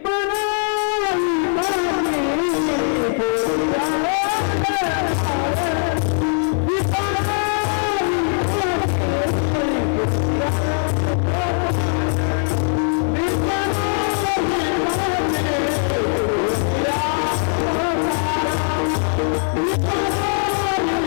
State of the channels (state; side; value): silent; right; 57 dB below the other